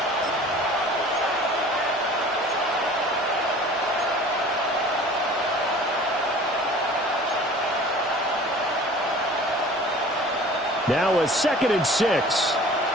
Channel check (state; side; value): normal; both; correlation 0.45